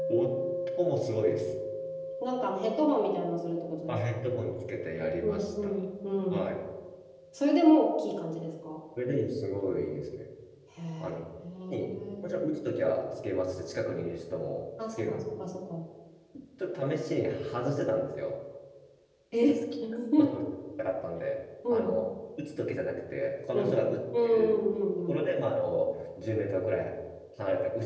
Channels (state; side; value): identical; both; correlation 1.00